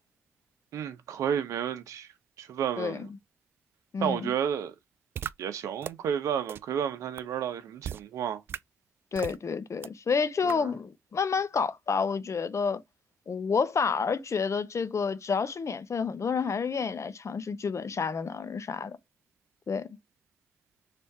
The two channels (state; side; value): normal; both; correlation 0.59